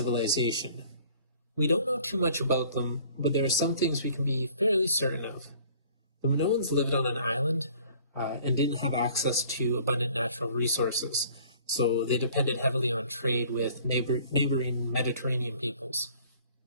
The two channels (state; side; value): inverted; both; correlation -0.53